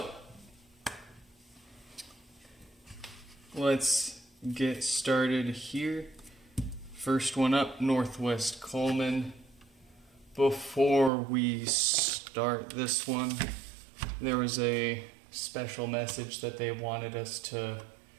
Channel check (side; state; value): left; drops out; at 11.1 s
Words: let's get started here. First one up, Northwest Coleman. Before we start this one, there was a special message that they wanted us to